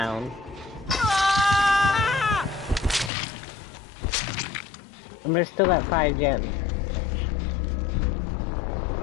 And we're still at 5 gems.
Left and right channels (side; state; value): right; drops out; at 3.1 s